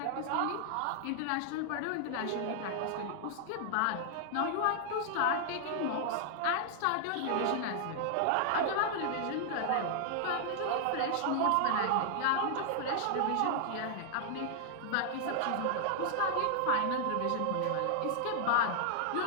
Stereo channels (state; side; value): different; both; correlation 0.00